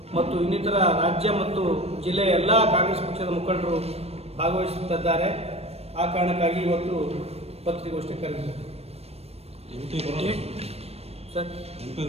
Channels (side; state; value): left; late; 0.30 ms